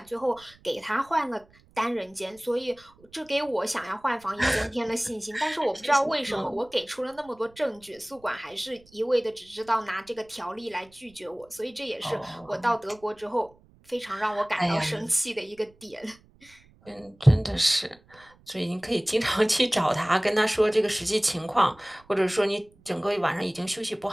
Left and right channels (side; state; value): right; noise; rumble, 28 dB below the sound